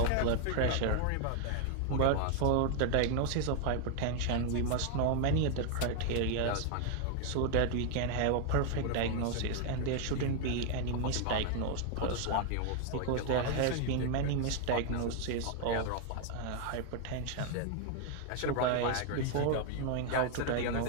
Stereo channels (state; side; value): different; both; correlation 0.00